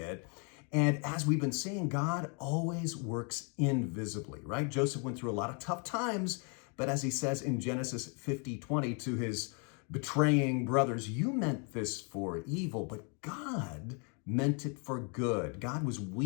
And as we've been seeing, God always works invisibly, right? Joseph went through a lot of tough times, but as he says in Genesis 50:20 to his betraying brothers, you meant this for evil, but God meant it for good. God was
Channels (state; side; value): quieter; right; 37.1 dB